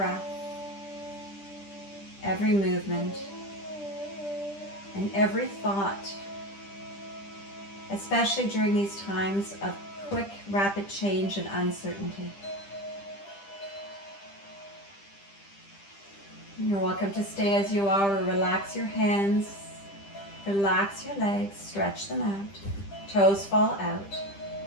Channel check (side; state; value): right; late; 10 ms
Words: every movement, and every thought, especially during these times of quick, rapid change and uncertainty. You're welcome to stay as you are, or relax your hands, relax your legs, stretch them out, toes fall out,